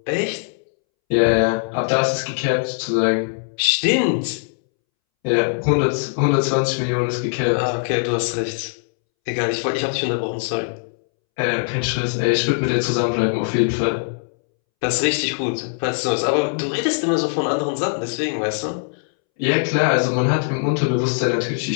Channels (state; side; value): silent; right; 65 dB below the other